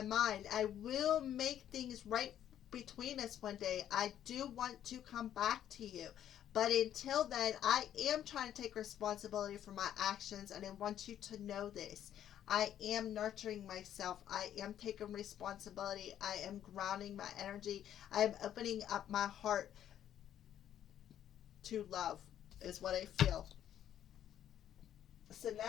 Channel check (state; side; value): quieter; right; 10.7 dB